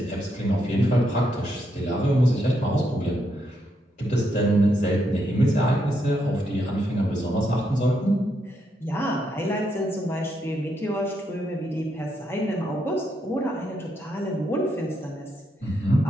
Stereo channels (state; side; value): normal; both; correlation 0.79